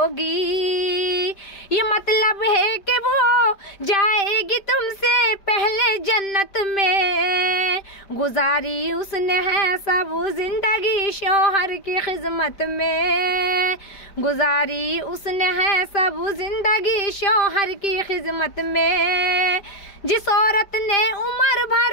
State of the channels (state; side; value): late; right; 5.0 ms